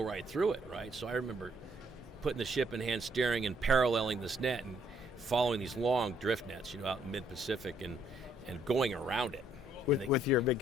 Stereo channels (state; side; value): normal; both; correlation 0.68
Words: through it, right? So I remember putting the ship in hand steering and paralleling this net and following these long drift nets, you know, out in mid-Pacific, and going around it. With your big